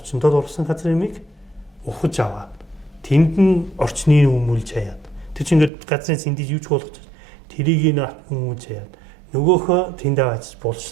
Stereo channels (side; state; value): left; drops out; at 5.7 s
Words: ургасан газар юмыг ухаж аваад тэнд нь орчныг өмүүлж хаяад тэр чинь ингээд газрын сэндиж юуч болгож тэрийг нь өмүүлж хаяад нөгөөхөө тэнд аваач